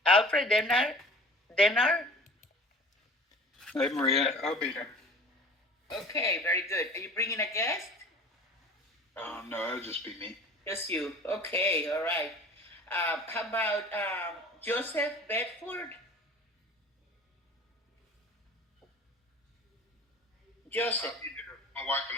Alfred Denmark? Hey, Maria, I'll be there. Okay, very good. Are you bringing a guest? No, it'll just be me. Just you. Okay, all right. How about Joseph Bedford? Joseph. My wife and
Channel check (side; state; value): both; normal; correlation 0.43